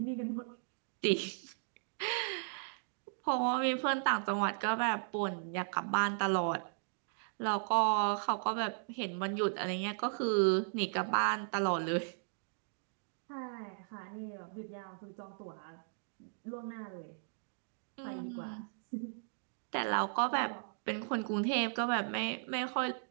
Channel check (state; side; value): silent; left; digital silence